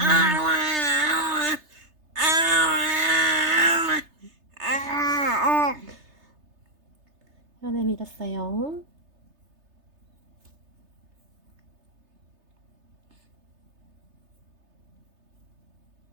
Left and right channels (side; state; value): left; late; 3.3 ms